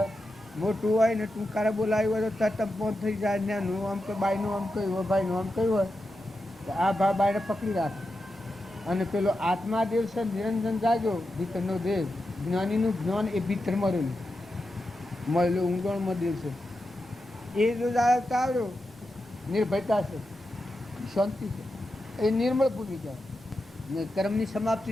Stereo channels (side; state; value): both; normal; correlation 0.89